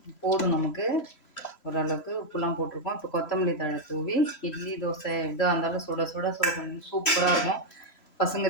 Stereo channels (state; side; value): late; right; 3.0 ms